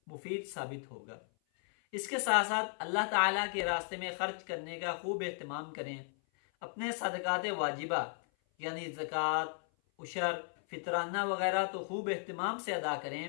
مفید ثابت ہوگا۔ اس کے ساتھ ساتھ اللہ تعالیٰ کے راستے میں خرچ کرنے کا خوب اہتمام کریں۔ اپنے صدقات واجبہ یعنی زکوٰۃ، عشر، فطرانہ وغیرہ تو خوب اہتمام سے ادا کریں۔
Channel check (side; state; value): right; silent; 54 dB below the other